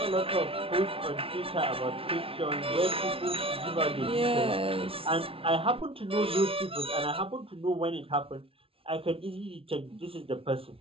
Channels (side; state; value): left; late; 0.26 ms